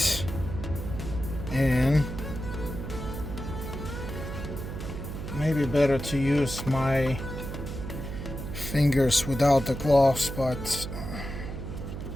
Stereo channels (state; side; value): noise; right; hum, 7 dB below the sound